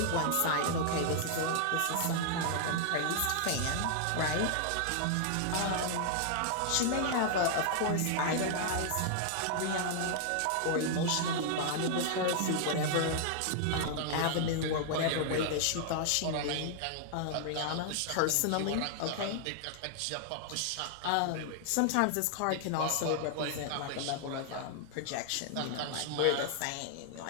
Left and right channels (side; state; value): both; different; correlation -0.01